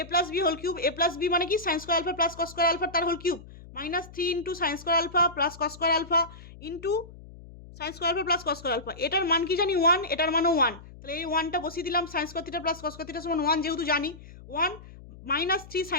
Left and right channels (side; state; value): left; noise; hum, 18 dB below the sound